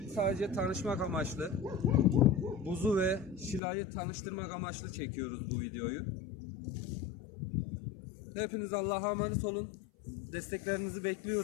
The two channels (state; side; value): drops out; right; at 3.6 s